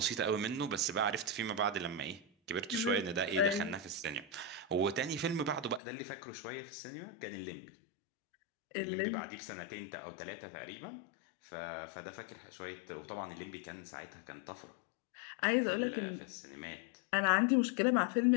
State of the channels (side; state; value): right; drops out; at 5.8 s